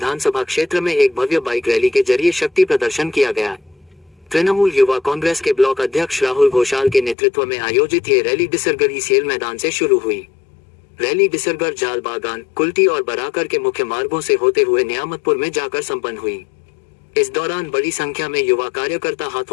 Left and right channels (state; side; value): drops out; right; at 7.2 s